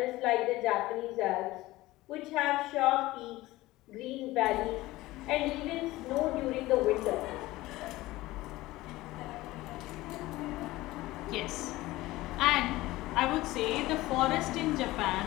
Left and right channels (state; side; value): quieter; right; 18.2 dB